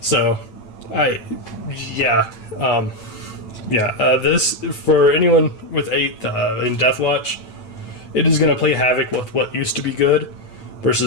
this, for anyone with 8th in Deathwatch, it is going to play havoc with what used to be good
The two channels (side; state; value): right; late; 9.0 ms